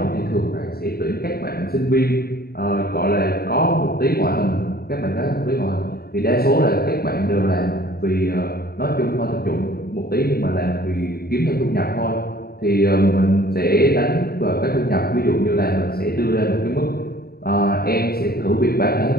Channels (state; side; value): late; right; 0.45 ms